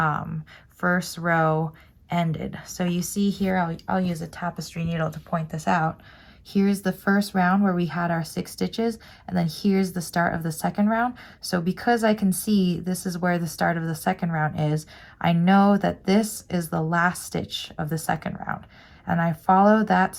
first row ended. So you see here, I'll use a tapestry needle to point this out. Here's the first round where we had our 6 stitches, and then here's the start of the second round. So because I can see this is where the start of the second round is, I know that this is the last stitch of the second round. And I follow that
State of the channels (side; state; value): both; identical; correlation 1.00